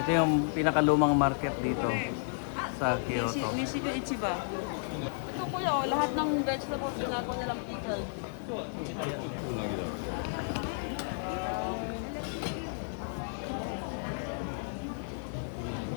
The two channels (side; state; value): right; silent; digital silence